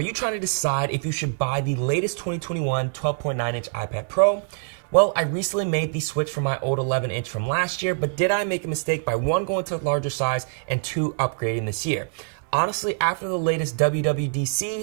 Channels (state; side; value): silent; left; 62 dB below the other